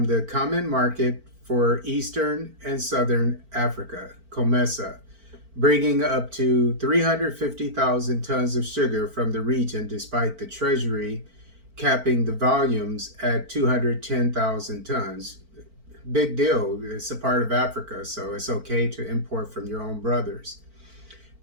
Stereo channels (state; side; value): late; left; 4.5 ms